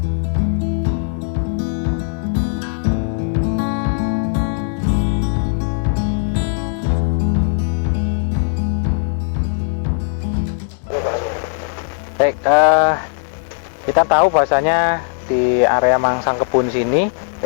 Baik, kita tahu bahwasanya di area Mangsangkebun sini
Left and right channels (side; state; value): right; silent; digital silence